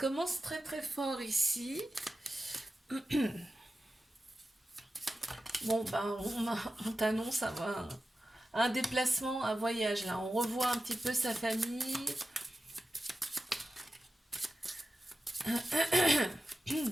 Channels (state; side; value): normal; both; correlation 0.92